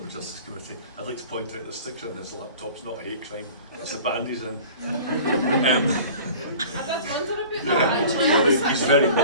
Justice Committee. I'd like to point out the sticker on his laptop's not a hate crime, it's a band he's in. I did wonder about that actually. Sorry, he's very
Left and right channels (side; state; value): both; inverted; correlation -0.43